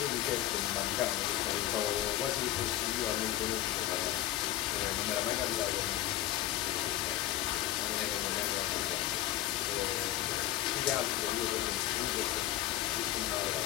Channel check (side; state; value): right; quieter; 13.7 dB